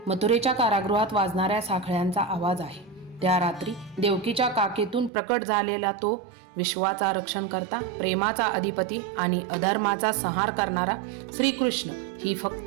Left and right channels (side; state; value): left; drops out; at 5.1 s